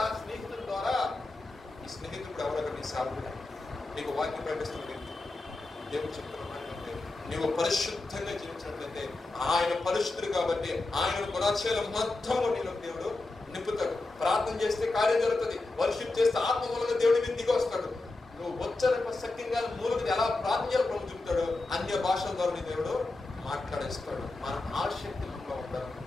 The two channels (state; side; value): quieter; right; 3.1 dB